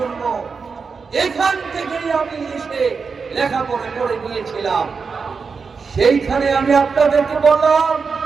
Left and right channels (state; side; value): quieter; left; 5.2 dB